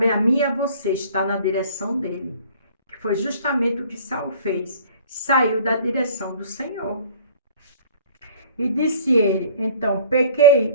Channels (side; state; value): both; inverted; correlation -0.49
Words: a mim e a você estar na direção dele. foi justamente o que Saul fez. Saiu da direção do Senhor. E disse ele, então,